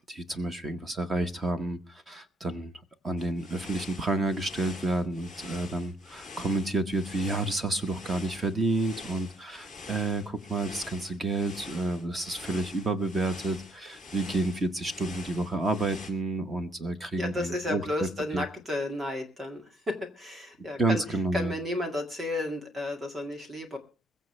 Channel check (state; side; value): normal; both; correlation 0.69